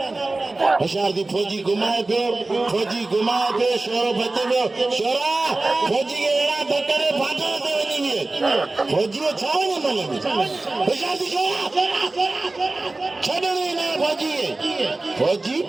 होशियारती फौजी घुमाए पियो शोरो बचे पियो शोरा फौजी खे अहिड़ा धकड़े फाटल ते वञी विए फौजी छा वञे मन में होशियारती शोरा छॾणी न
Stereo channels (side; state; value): left; quieter; 3.1 dB